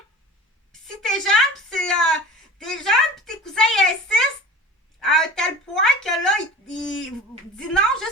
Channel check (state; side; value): normal; both; correlation 0.38